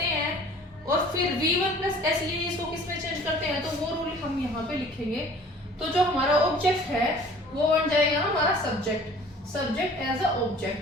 हैं और फिर V1 प्लस SEIS को किस में चेंज करते हैं, तो वो रूल हम यहाँ पे लिखेंगे। तो जो हमारा ऑब्जेक्ट है वो बन जाएगा हमारा subject as a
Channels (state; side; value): normal; both; correlation 0.49